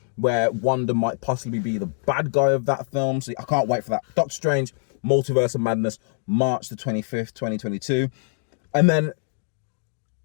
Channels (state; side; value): silent; right; digital silence